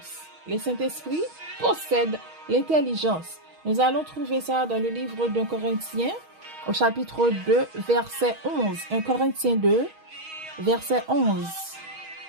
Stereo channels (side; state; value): left; late; 6.3 ms